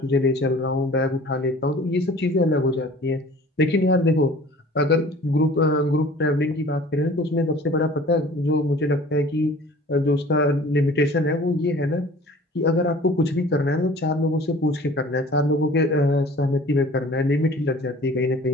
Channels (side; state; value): both; normal; correlation 0.47